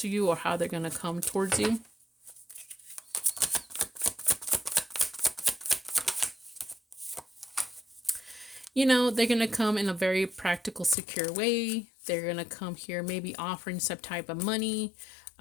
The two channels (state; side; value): drops out; right; at 11.0 s